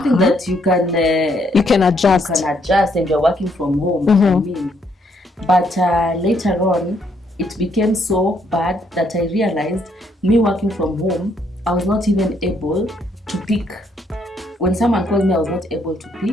that you can adjust. You can adjust, and you're working from home. I mean, but later on, it became so bad that I realized me working from home, I was not even able to pick. When someone called me, I was not able to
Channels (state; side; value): normal; both; correlation 0.71